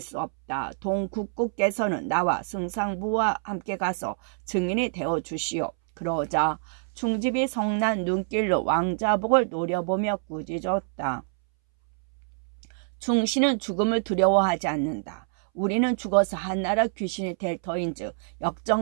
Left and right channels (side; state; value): left; silent; 61 dB below the other